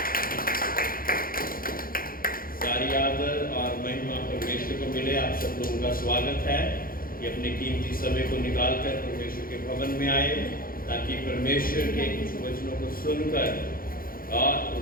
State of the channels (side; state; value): right; late; 0.42 ms